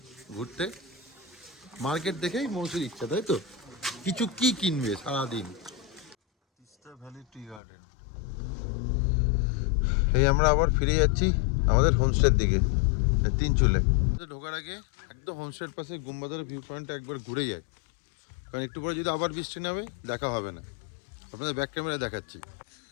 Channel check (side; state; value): right; drops out; at 7.6 s